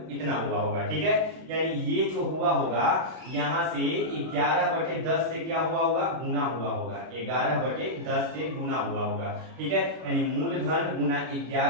इतना हुआ होगा, ठीक है। यानी ये जो हुआ होगा यहाँ से 11/10 से क्या हुआ होगा, गुना हुआ होगा, 11/10 से गुना हुआ होगा, ठीक है। यानी मूलधन गुना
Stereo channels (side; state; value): left; late; 32 ms